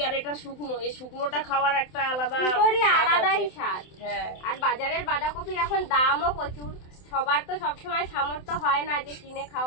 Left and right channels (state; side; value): late; right; 27 ms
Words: আর এটা শুকনো, এই শুকনোটা খাওয়ার একটা আলাদাই স্বাদ। হ্যাঁ, আর বাজারের বাঁধাকপির এখন দামও প্রচুর, সবার তো সবসময় সামর্থ্য হয় না যে কিনে